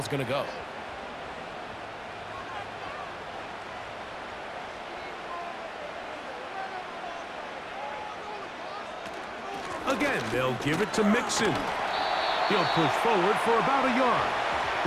going to go. Again, they'll give it to Mixon. He'll push forward for about a yard.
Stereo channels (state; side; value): identical; both; correlation 1.00